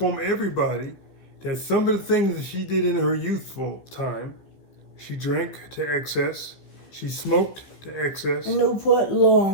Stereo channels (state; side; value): late; right; 15 ms